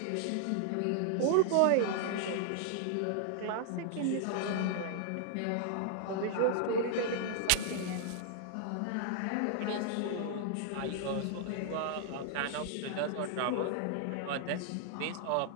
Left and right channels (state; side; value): different; both; correlation -0.01